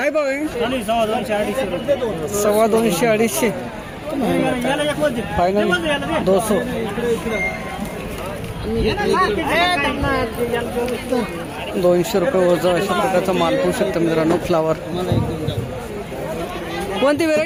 भाव आहे? 250 250 फायनल 200. 200 रुपये वजा अशा प्रकारचा माल पाहू शकता मित्रांनो. फ्लावर कोणती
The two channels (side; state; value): both; identical; correlation 1.00